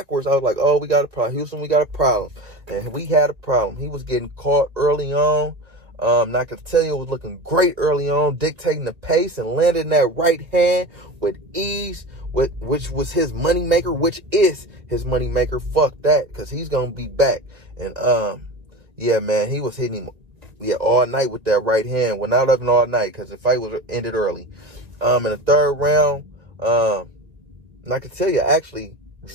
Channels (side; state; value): left; late; 1.6 ms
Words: I was like, oh, we got a problem. Houston, we got a problem. And we had a problem. He was getting caught early on. Nakatilia was looking great early on, dictating the pace and landing that right hand with ease, which was his moneymaker, which is his moneymaker. Fuck that, because he's going to be back. And, yeah, man, he was hitting him all night with that right hand. Well, not even all night, because the fight was ended early. In the third round, Nakatilia actually